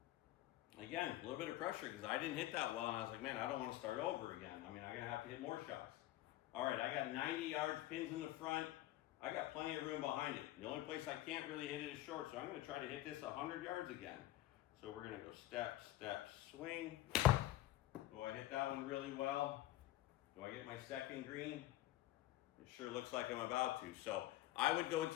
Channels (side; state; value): right; quieter; 15.3 dB